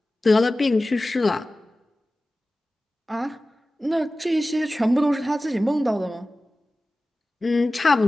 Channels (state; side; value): normal; both; correlation 0.96